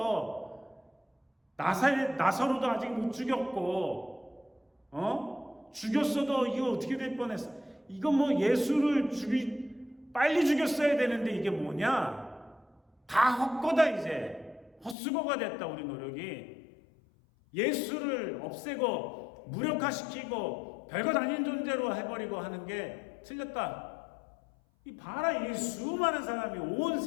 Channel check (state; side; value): drops out; right; at 15.0 s